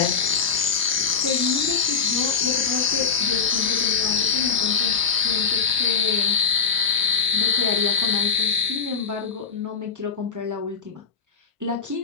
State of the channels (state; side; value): quieter; right; 6.0 dB